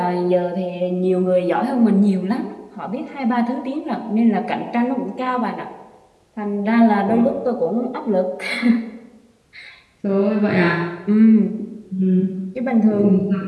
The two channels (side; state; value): both; identical; correlation 1.00